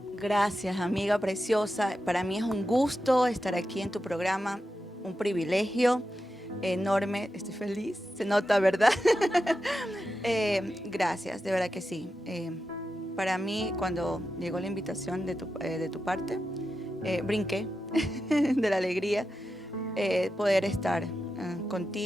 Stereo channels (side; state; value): both; normal; correlation 0.90